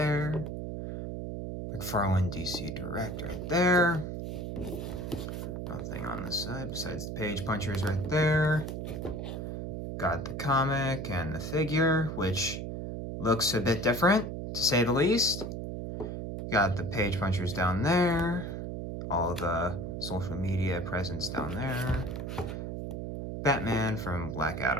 McFarlane DC Direct right there. Nothing on this side besides the page punchers right there. Got the comic and the figure, which looks a bit different, to say the least. Got the page punchers down there. All the social media presence down there. Batman from Black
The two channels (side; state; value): right; noise; hum, 5 dB below the sound